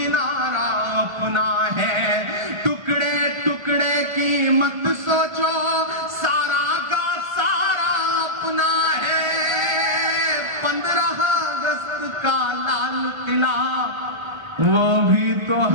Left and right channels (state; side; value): late; left; 1.5 ms